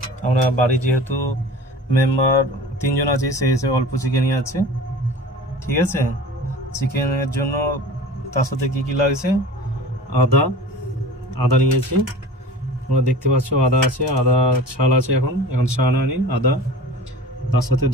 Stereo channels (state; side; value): normal; both; correlation 0.39